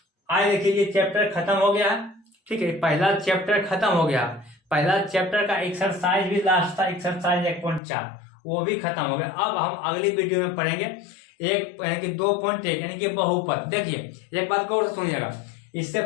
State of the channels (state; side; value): drops out; right; at 7.8 s